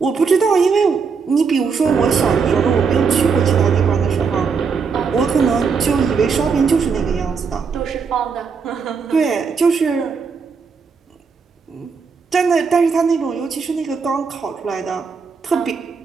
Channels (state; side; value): quieter; left; 5.5 dB